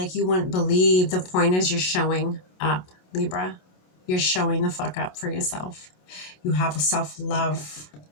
you wouldn't believe, the point is you're showing up, Libra. You're showing the fuck up for yourself. You have a self-love.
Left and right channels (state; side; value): late; right; 27 ms